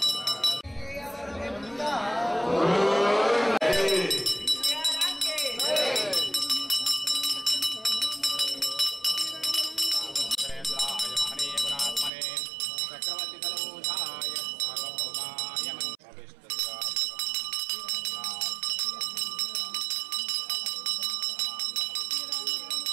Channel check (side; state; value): left; drops out; at 12.1 s